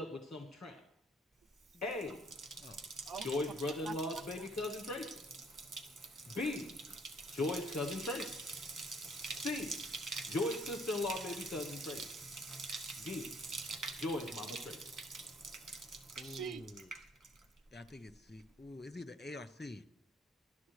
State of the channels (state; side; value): normal; both; correlation 0.61